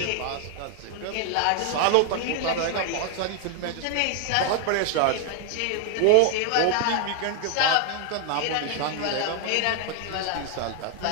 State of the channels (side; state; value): both; different; correlation 0.00